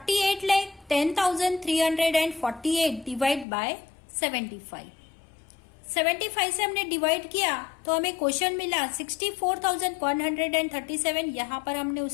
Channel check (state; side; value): drops out; right; at 3.5 s